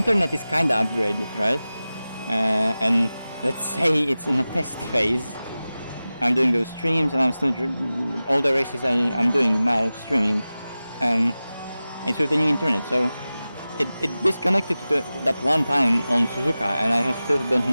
is kinda upgraded, right? And let's say it's in a test phase. I'm doing those streams and I'm still all the races I'm doing now streaming. It's with the new internet, so it disconnected to that one time on Suzuka, and I still don't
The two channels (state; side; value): inverted; both; correlation -0.96